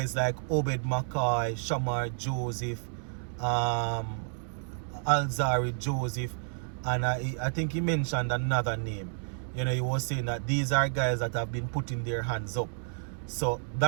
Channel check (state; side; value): silent; left; digital silence